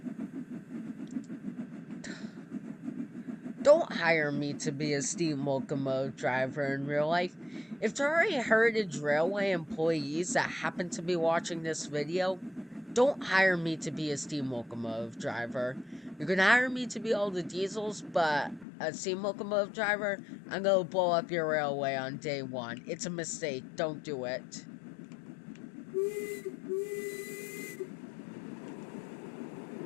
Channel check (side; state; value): right; drops out; at 18.7 s